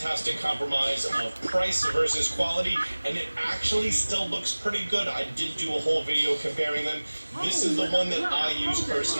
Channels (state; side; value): inverted; both; correlation -1.00